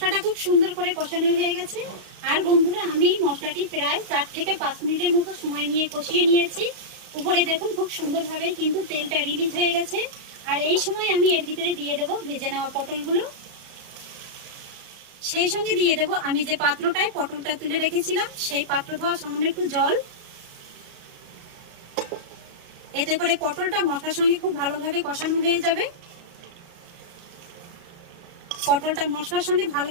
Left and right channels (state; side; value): late; left; 34 ms